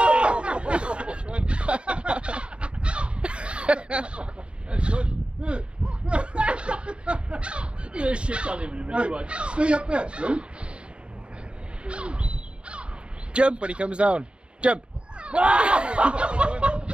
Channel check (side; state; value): left; late; 0.055 ms